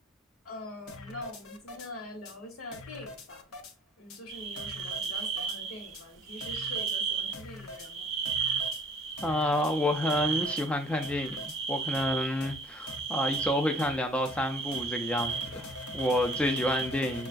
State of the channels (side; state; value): both; normal; correlation 0.56